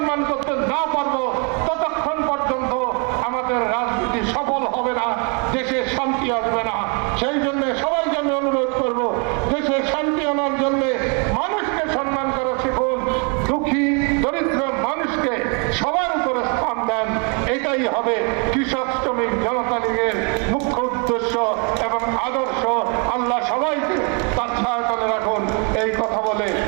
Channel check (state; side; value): quieter; left; 35.9 dB